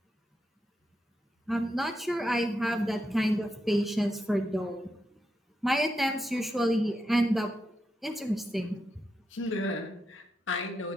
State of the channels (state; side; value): normal; both; correlation 0.85